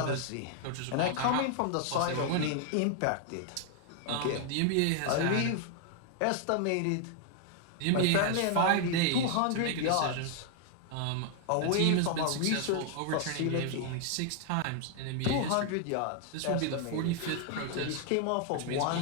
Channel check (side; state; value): both; different; correlation 0.00